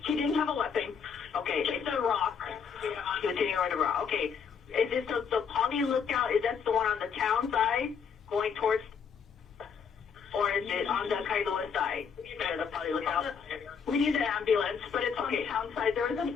He didn't have a weapon. Okay. It's a rock. He was hitting her with a rock. Okay. Is this the Poly Lookout? Is that the one on the town side going towards, or is it on the Kailua side? The Poly Lookout. We need an ambulance, but it's on the town side. There was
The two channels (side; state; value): right; quieter; 6.6 dB